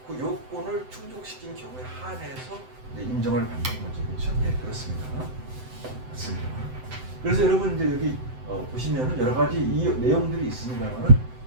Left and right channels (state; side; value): late; left; 7.8 ms